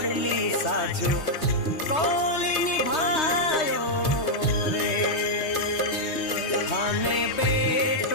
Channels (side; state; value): right; late; 3.2 ms